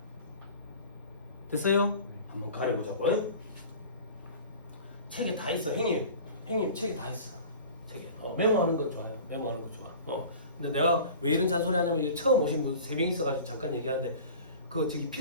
됐어요? 한번 가려보자고. 책에 다 있어. 형님 책에 다 있어. 책에. 메모하는 건 좋아요. 메모하는 건 좋아. 근데 내가 왜 이런 잔소리 하냐면 처음 오신 분 3명 있어가지고 잠깐 얘기하는데 그 저기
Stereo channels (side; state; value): both; inverted; correlation -0.40